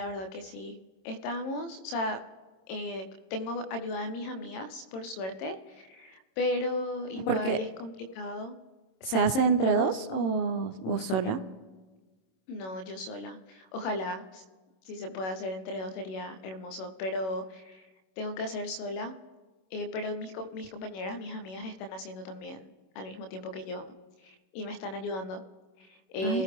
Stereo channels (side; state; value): right; late; 27 ms